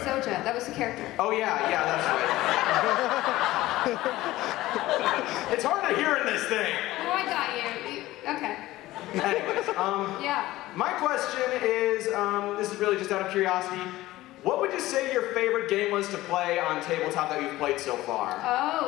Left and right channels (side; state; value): right; quieter; 16.9 dB